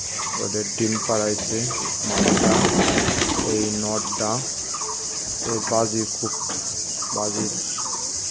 ওদের ডিম পাড়াইছে মাটা। এই নটটা এই খুব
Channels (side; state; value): both; identical; correlation 1.00